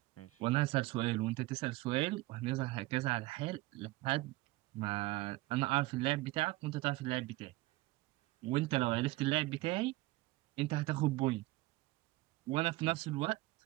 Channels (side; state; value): left; quieter; 20.0 dB